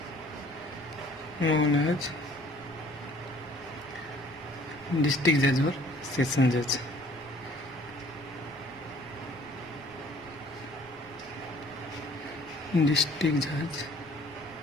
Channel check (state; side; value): noise; right; rumble, 26 dB below the sound